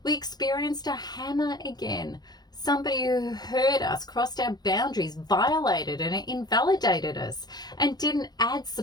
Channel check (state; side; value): late; right; 0.19 ms